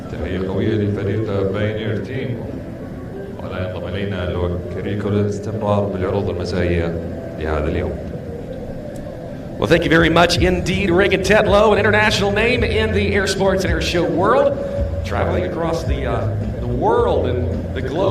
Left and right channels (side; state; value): both; identical; correlation 1.00